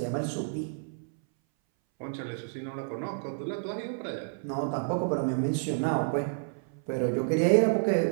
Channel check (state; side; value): silent; left; 58 dB below the other